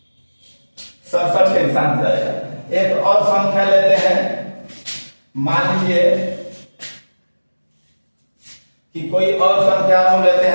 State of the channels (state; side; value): inverted; both; correlation -1.00